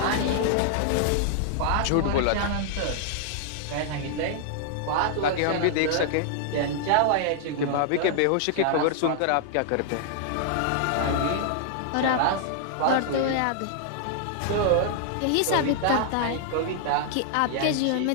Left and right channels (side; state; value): both; different; correlation -0.01